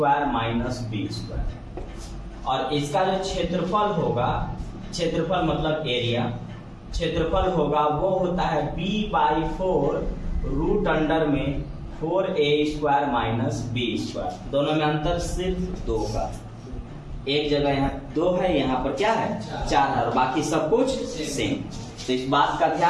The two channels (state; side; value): identical; both; correlation 1.00